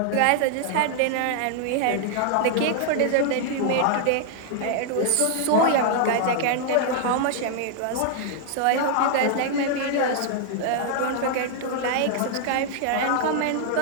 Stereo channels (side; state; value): both; different; correlation -0.01